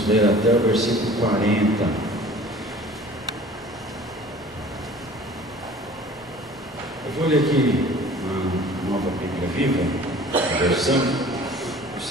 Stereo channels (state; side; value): normal; both; correlation 0.46